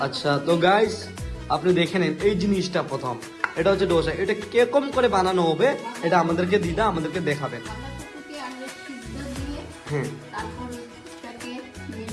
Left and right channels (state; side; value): identical; both; correlation 1.00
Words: আচ্ছা, তো গাইস আপনি দেখে নেন এই জিনিসটা প্রথম। এটা হচ্ছে ডোসা। এটা কিরকম করে বানানো হবে এটা আমাদেরকে দিদা আমাদেরকে দেখাবেন। বাঁধাকপিকে আগে সিদ্ধ দিয়ে হ্যাঁ তারপর ওটাকে